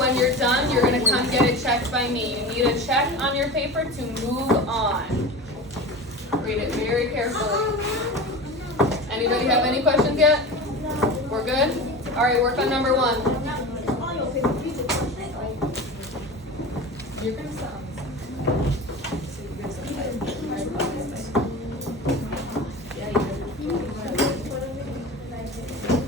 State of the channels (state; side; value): normal; both; correlation 0.31